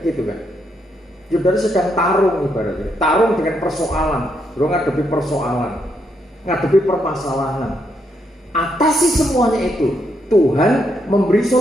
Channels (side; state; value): both; normal; correlation 0.77